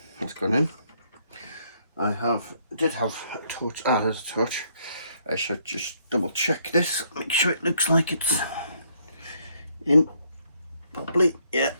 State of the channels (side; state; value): both; inverted; correlation -0.69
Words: That's gone in. I did have a torch. Ah, there's a torch. I should just double check this. Make sure it looks like it's in properly. Yeah,